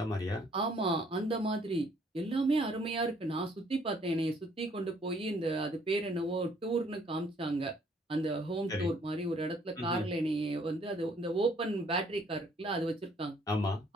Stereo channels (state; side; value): normal; both; correlation 0.63